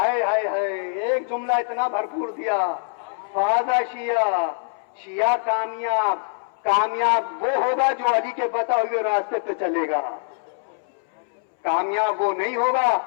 ہائے ہائے, ایک جملہ اتنا بھرپور دیا, فاضا شیعہ کامیاب وہ ہوگا جو علی کے بتا ہوئے راستے پہ چلے گا. کامیاب وہ نہیں ہوگا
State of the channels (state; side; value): silent; right; 63 dB below the other